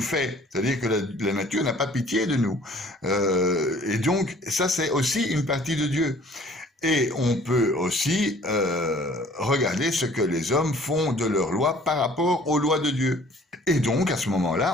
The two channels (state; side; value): normal; both; correlation 0.53